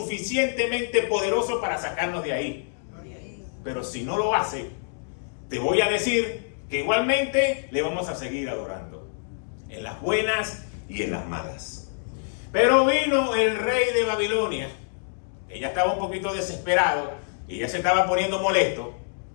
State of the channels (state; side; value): silent; right; digital silence